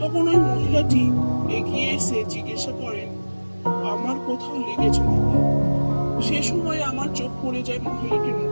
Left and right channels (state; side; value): inverted; both; correlation -1.00